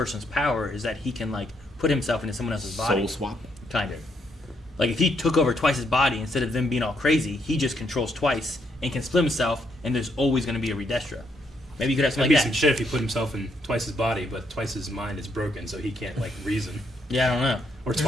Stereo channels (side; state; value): both; normal; correlation 0.75